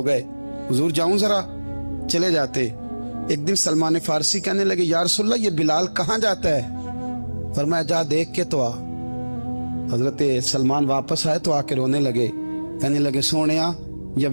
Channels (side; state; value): both; inverted; correlation -1.00